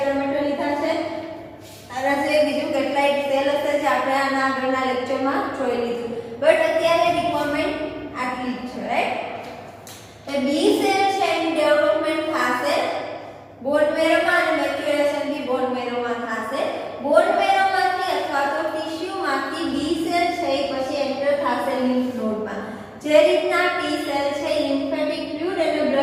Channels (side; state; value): both; identical; correlation 1.00